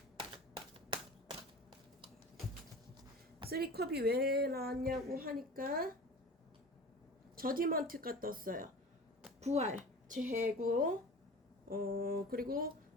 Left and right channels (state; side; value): normal; both; correlation 0.37